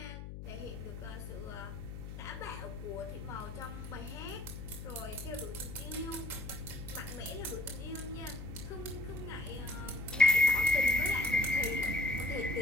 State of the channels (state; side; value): noise; left; hum, 9 dB below the sound